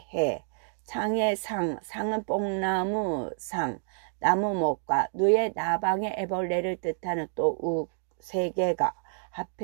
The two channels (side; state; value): left; silent; digital silence